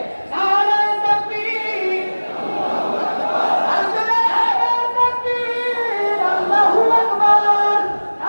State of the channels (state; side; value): inverted; both; correlation -1.00